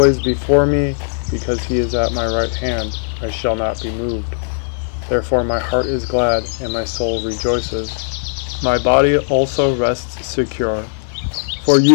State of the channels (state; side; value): silent; right; 57 dB below the other